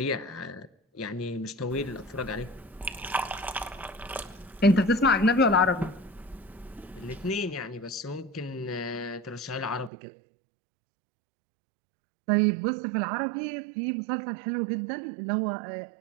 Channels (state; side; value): drops out; left; at 9.9 s